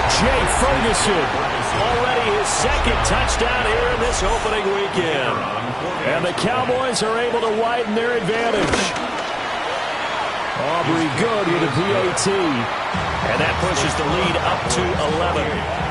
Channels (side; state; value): both; identical; correlation 1.00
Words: Jay Ferguson. Already his 2nd touchdown here in this opening weekend. And the Cowboys are able to widen their advantage. Aubrey good with a PAT. And that pushes the lead up to 11.